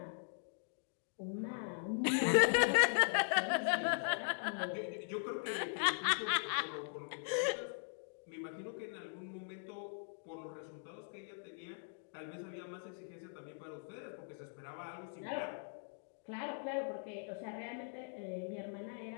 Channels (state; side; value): silent; right; digital silence